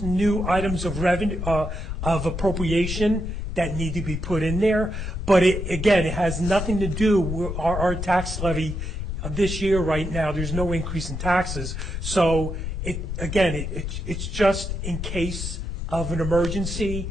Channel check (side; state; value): left; noise; rumble, 4 dB below the sound